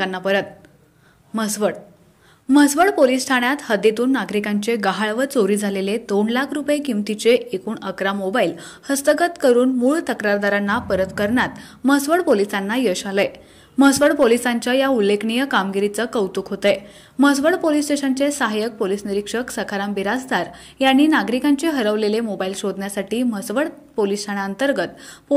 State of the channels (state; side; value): identical; both; correlation 1.00